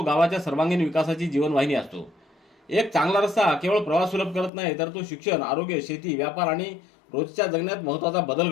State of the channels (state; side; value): drops out; right; at 4.5 s